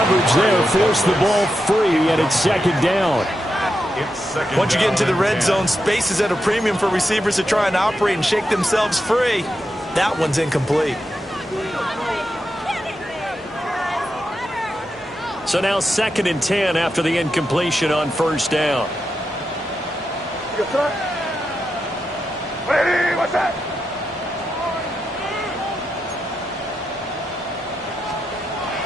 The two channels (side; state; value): both; normal; correlation 0.86